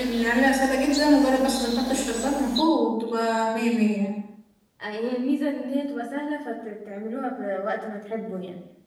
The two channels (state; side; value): identical; both; correlation 1.00